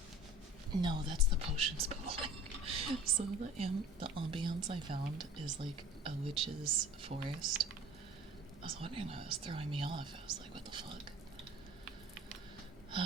No, that's the potions bubbling. So the ambiance I found is like a witch's forest. I was wondering why it was throwing me off. I was like, what the fuck?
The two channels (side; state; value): both; normal; correlation 0.44